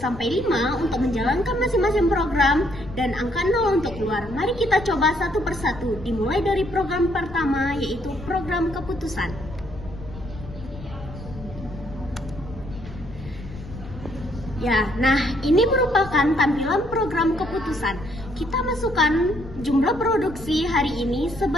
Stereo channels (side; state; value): left; noise; rumble, 14 dB below the sound